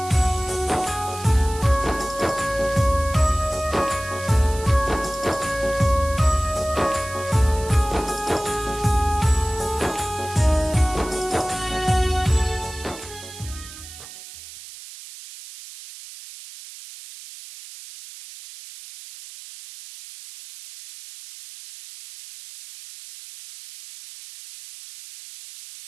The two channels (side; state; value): right; noise; hiss, 15 dB below the sound